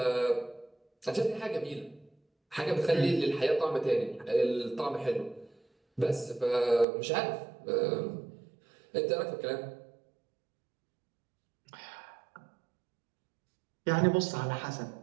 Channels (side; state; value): left; drops out; at 6.9 s